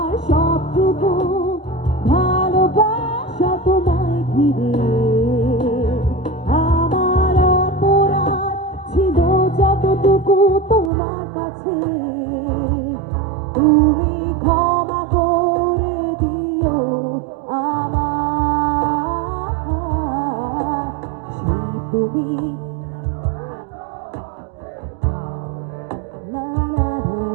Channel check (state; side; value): drops out; left; at 10.9 s